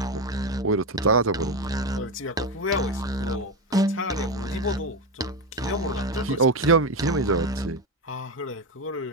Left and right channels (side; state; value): both; normal; correlation 0.14